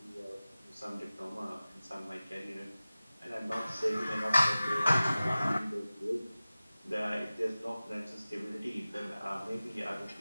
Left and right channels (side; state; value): both; inverted; correlation -0.97